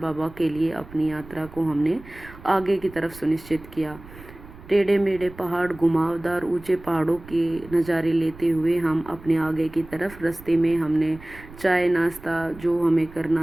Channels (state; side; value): noise; right; rumble, 18 dB below the sound